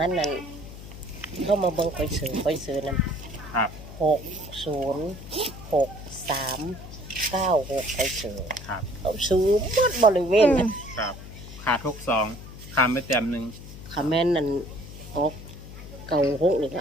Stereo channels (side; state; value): left; noise; hum, 14 dB below the sound